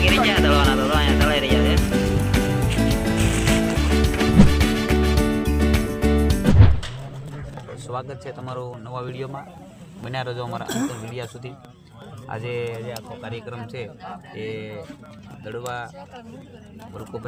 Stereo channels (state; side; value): identical; both; correlation 1.00